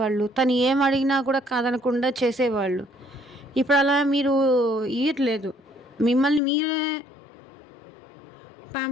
తను ఏం అడిగినా కూడా కాదనకుండా చేసేవాళ్ళు. ఇప్పుడు అలా మీరు ఇయ్యట్లేదు. మిమ్మల్ని మీరే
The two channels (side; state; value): right; drops out; at 6.4 s